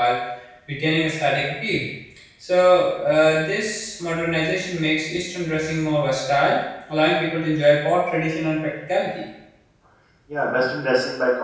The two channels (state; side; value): identical; both; correlation 1.00